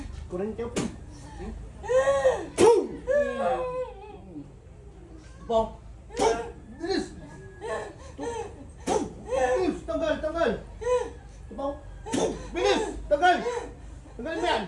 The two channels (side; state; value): both; identical; correlation 1.00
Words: Kurente po. Bong. Bilis. Tanggal. Bong. Bilis, tanggal. Tanggal mo yan.